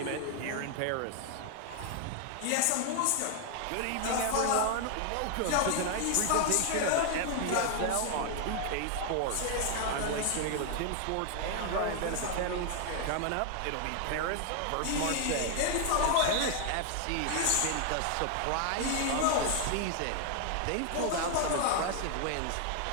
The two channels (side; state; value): both; different; correlation 0.00